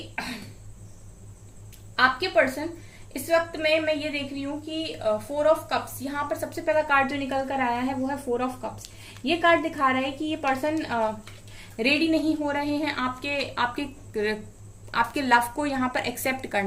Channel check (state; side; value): identical; both; correlation 1.00